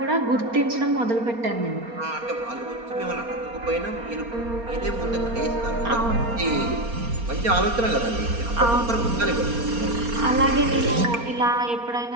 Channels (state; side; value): late; left; 4.3 ms